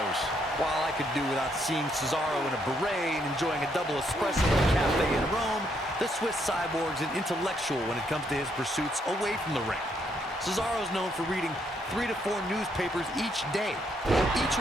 While I could do without seeing Cesaro in a beret and enjoying a double espresso at a cafe in Rome, the Swiss cyborg's an intellectual when it comes to his pursuits away from the ring. Cesaro's known for reading 3 to 4 newspapers each day, each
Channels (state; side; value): normal; both; correlation 0.74